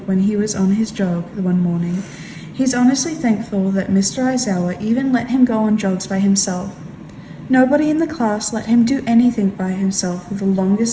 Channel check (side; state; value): both; identical; correlation 1.00